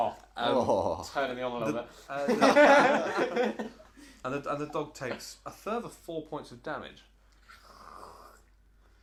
Oh. turning me on a little bit. And the dog takes a further 4 points of damage.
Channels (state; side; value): identical; both; correlation 1.00